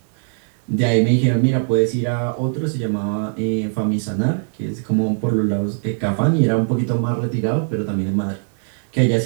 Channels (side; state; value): left; silent; digital silence